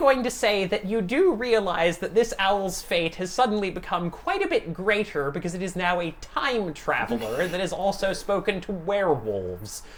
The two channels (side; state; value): both; identical; correlation 1.00